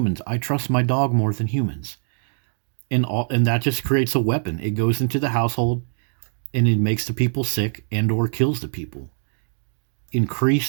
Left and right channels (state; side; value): silent; left; digital silence